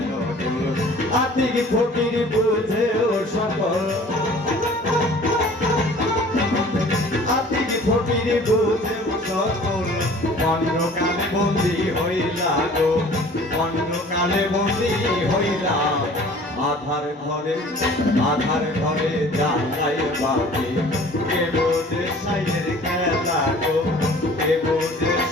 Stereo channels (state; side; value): normal; both; correlation 0.48